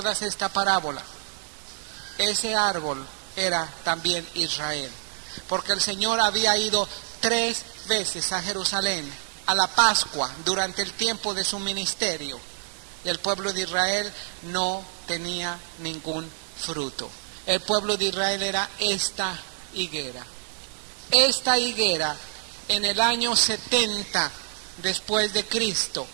esta parábola? Ese árbol era también Israel, porque el Señor había ido 3 veces a Jerusalén, a la Pascua, durante el tiempo de su ministerio. Y el pueblo de Israel no tenía ningún fruto. El pueblo de Israel era esta higuera. Esta higuera en el año 70 después de Cristo,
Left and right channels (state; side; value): silent; left; digital silence